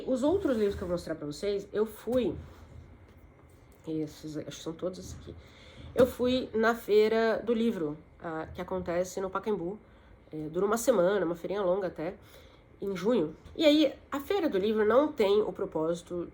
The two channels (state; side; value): identical; both; correlation 1.00